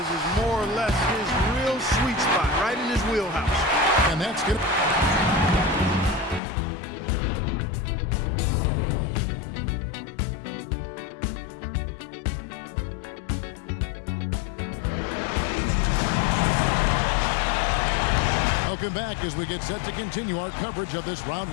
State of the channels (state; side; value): drops out; right; at 6.4 s